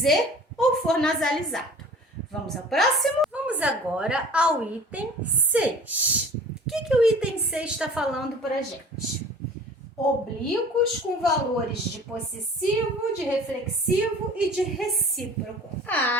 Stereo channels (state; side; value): normal; both; correlation 0.44